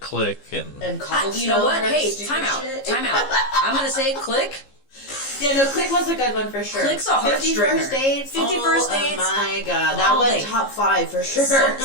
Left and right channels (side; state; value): right; late; 15 ms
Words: Click and And Cobblestone. You know what? or Hey, stupid time out. shit. Time out. I'm gonna say Click. Yeah, no, Click was a good one for sure. Click's a 50 heartstringer. First Dates. 50 First Dates. Oh my God, that All was day. top 5 for sure.